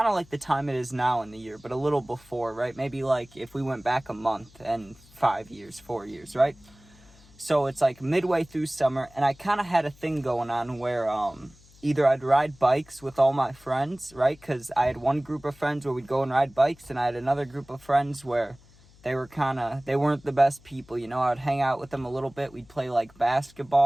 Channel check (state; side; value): noise; left; hum, 26 dB below the sound